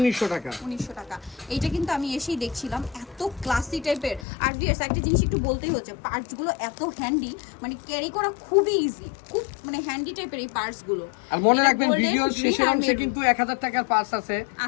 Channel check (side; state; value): right; drops out; at 4.2 s